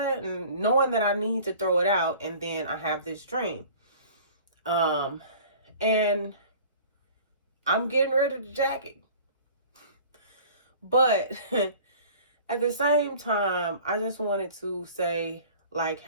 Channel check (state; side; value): inverted; both; correlation -0.46